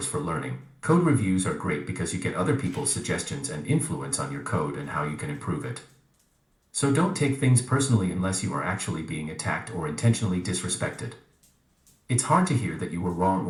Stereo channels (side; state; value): both; identical; correlation 1.00